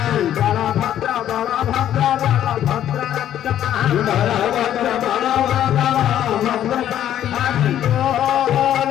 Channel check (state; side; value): quieter; right; 11.1 dB